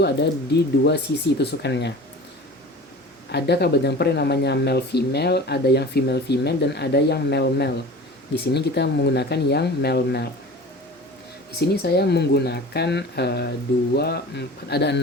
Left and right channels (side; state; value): both; normal; correlation 0.38